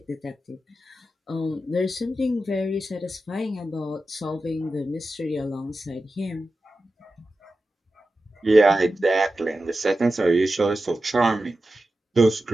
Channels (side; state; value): both; normal; correlation 0.92